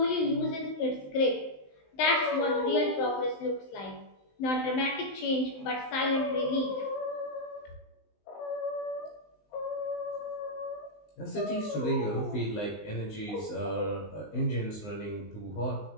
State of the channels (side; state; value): right; late; 19 ms